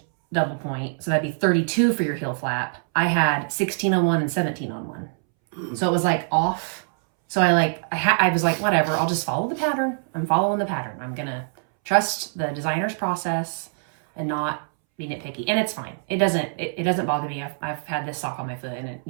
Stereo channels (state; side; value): silent; left; 63 dB below the other